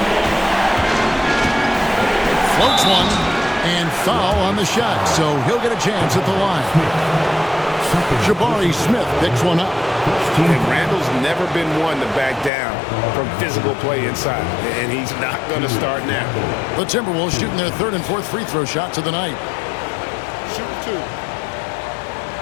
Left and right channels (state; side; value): drops out; right; at 12.5 s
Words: Floats one, and foul on the shot, so he'll get a chance at the line. Jabari Smith picks one up. And Randall's never been one to back down from physical play inside, and he's not going to start now. The Timberwolves shooting their 3rd and 4th free throw shots of the night. Shoot 2.